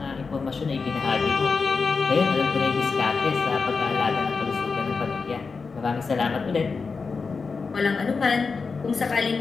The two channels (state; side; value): quieter; right; 4.7 dB